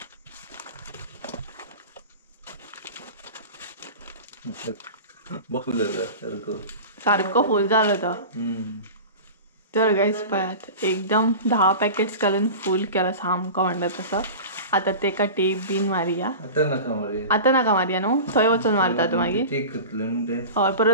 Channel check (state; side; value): inverted; both; correlation -0.33